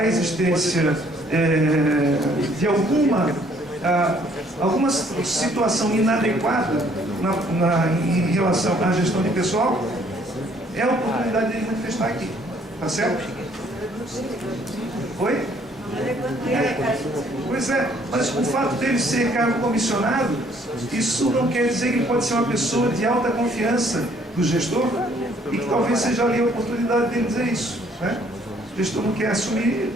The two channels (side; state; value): both; normal; correlation 0.63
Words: existência de alguma situação inadequada em relação à gestão de pessoal. É a oportunidade de manifestar aqui. Tá certo? Oi? Pois é, mas o fato dele ser cargo comissionado, isso não quer dizer que ele pode ser uma pessoa de alta confiança do gestor e que talvez seja ali a oportunidade dele dizer isso, né? O gestor não quer assumir, ele